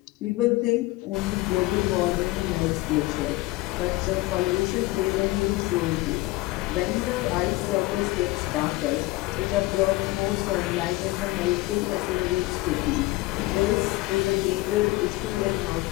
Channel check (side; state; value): right; quieter; 20.2 dB